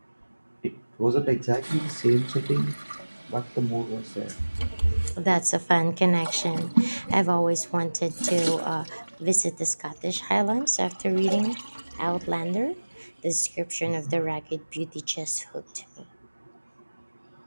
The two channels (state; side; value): inverted; both; correlation -1.00